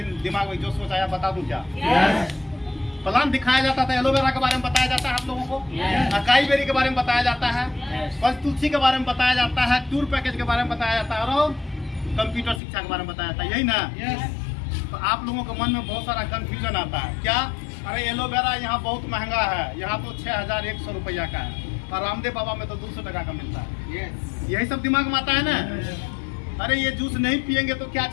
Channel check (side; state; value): right; drops out; at 12.6 s